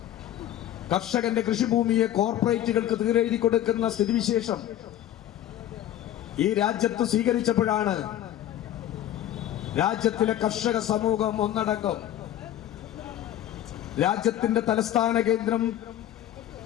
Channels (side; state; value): right; quieter; 12.2 dB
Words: കർഷകന്റെ കൃഷിഭൂമിയെ കോർപ്പറേറ്റുകൾക്ക് തീരെഴുതി കൊടുക്കുന്ന സ്ഥിതിവിശേഷം ഈ രാജ്യത്ത് സ്വീകരിച്ചപ്പോഴാണ് രാജ്യത്തിലെ കർഷക സമൂഹം ഒന്നടങ്കം രാജ്യത്തിന്റെ തലസ്ഥാന കേന്ദ്രം